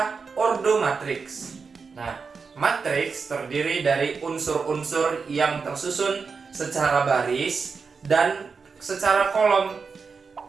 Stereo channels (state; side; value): quieter; left; 5.1 dB